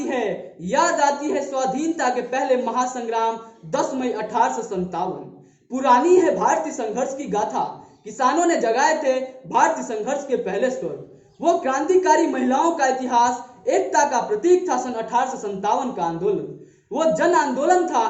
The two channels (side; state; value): both; identical; correlation 1.00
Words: है स्वाधीनता के पहले महासंग्राम 10 मई 1857। पुरानी है भारतीय संघर्ष की गाथा, किसानों ने जगाए थे भारतीय संघर्ष के पहले स्वर। वो क्रांतिकारी महिलाओं का इतिहास, एकता का प्रतीक था सन 1857 का आंदोलन। वो जन आंदोलन था